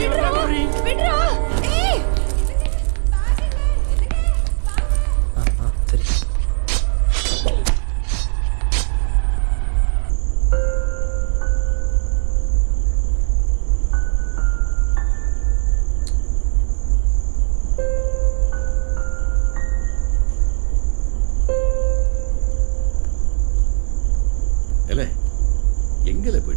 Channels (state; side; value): silent; left; digital silence